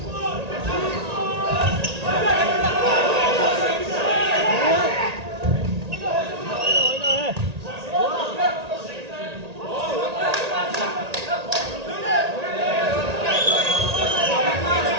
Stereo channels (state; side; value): late; left; 1.8 ms